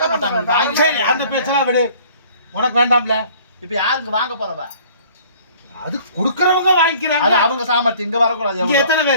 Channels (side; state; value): both; inverted; correlation -0.53